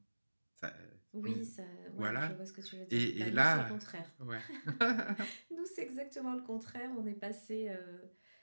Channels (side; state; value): both; inverted; correlation -1.00